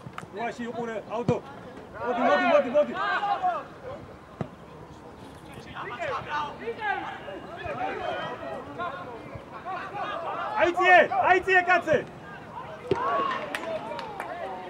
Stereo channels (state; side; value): identical; both; correlation 1.00